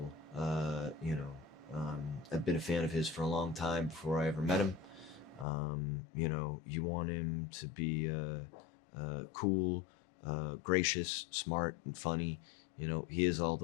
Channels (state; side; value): drops out; right; at 5.5 s